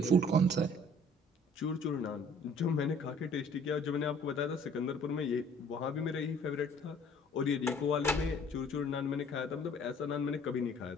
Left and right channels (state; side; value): normal; both; correlation 0.55